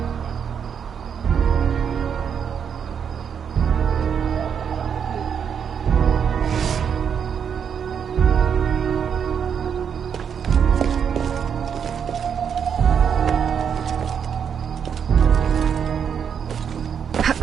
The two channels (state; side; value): quieter; left; 7.5 dB